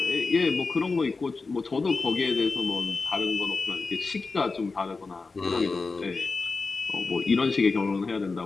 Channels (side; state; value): right; quieter; 4.1 dB